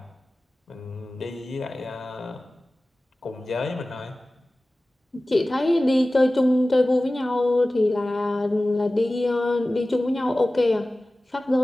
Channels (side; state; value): both; normal; correlation 0.97